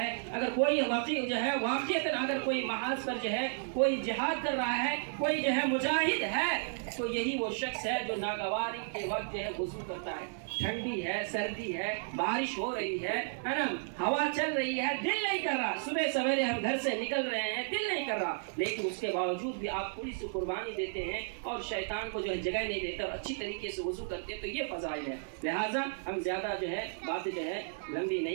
अगर कोई वाकई जो है वाक़ईतन अगर कोई महाज पर जो है कोई जिहाद कर रहा है, कोई जो है मुजाहिद है, तो यही वो शख्स है जो नागवारी के वक्त जो है वज़ू करता है। ठंडी है, सर्दी है, बारिश हो रही है ना, हवा चल रही है, दिल नहीं कर रहा, सुबह सवेरे हम घर से निकल रहे हैं, दिल नहीं कर रहा, लेकिन उसके बावजूद भी आप थोड़ी सी कुर्बानी देते हैं और शैतान को जो है जगह नहीं देते और अच्छी तरीके से वज़ू करते हैं, तो ये फ़ज़ाइल है। लिहाजा हम ज़्यादा जो है बातें जो है लंबी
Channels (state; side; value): silent; left; digital silence